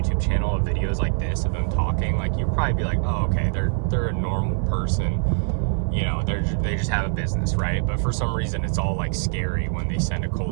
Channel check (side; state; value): left; silent; 58 dB below the other